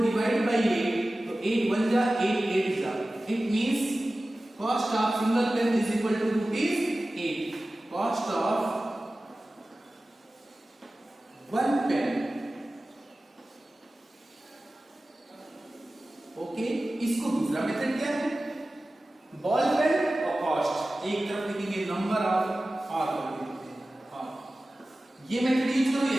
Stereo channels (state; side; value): normal; both; correlation 0.96